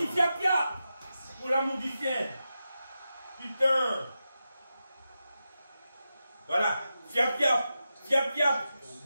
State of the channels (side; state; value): both; inverted; correlation -0.90